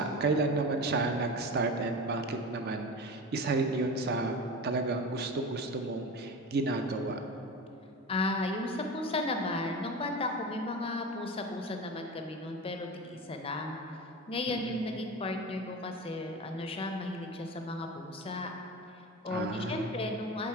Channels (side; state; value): both; normal; correlation 0.28